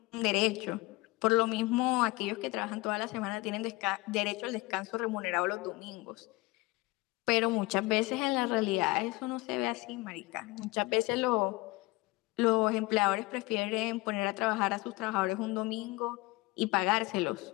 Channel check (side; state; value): right; quieter; 22.2 dB